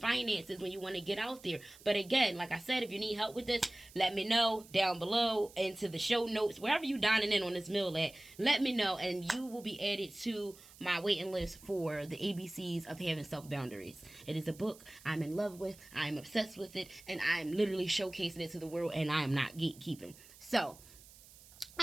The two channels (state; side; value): noise; right; hiss, 21 dB below the sound